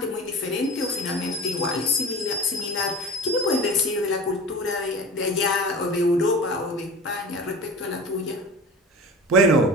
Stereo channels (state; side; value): normal; both; correlation 0.35